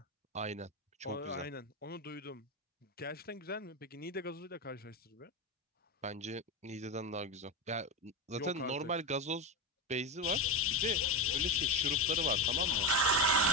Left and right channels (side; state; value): both; normal; correlation 0.15